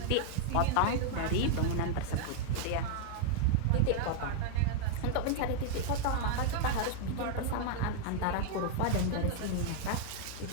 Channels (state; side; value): different; both; correlation -0.01